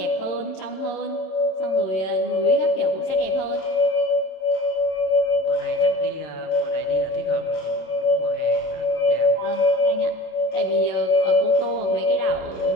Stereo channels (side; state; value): right; late; 27 ms